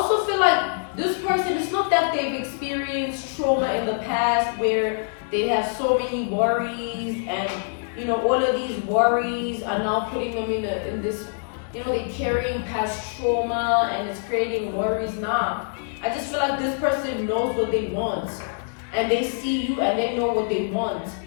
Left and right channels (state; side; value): silent; right; digital silence